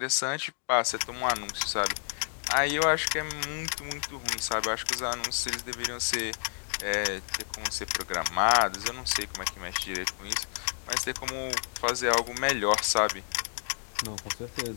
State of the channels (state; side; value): silent; right; digital silence